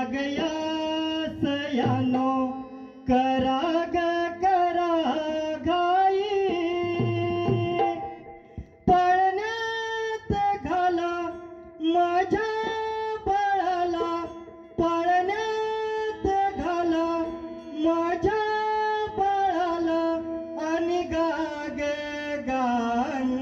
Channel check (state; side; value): identical; both; correlation 1.00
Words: गया सयानो करा ग करा घाई पळण्यात घाला माझ्या बाळाला पळण्यात घाला माझ्या बाळाला आणि गाग